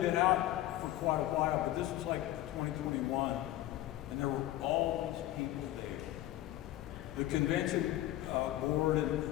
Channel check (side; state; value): right; quieter; 14.7 dB